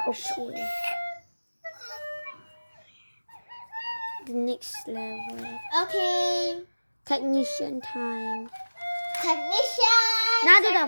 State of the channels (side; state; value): both; inverted; correlation -1.00